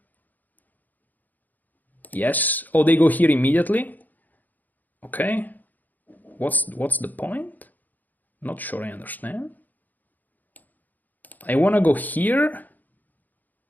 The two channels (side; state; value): right; late; 0.084 ms